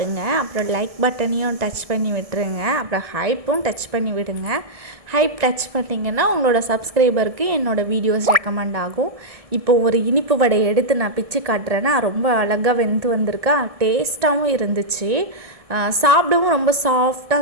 அப்புறம் லைக் பட்டனையும் டச் பண்ணி விட்டுருங்க. அப்புறம் ஹைப்பும் டச் பண்ணி விடுங்க. ஹைப் டச் பண்ணிங்கன்னா உங்களோட சப்ஸ்கிரைபருக்கு என்னோடய வீடியோஸ் ரெக்கமெண்ட் ஆகும். இப்போ ஒரு இனிப்பு வடை எடுத்து நான் பிச்சு காட்டுறேன்னா ரொம்ப அழகாக வெந்து வந்திருக்கா. டேஸ்ட்டாகவும் இருந்துச்சு. சாப்பிடவும் ரொம்ப சாஃப்டாக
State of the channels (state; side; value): late; left; 1.7 ms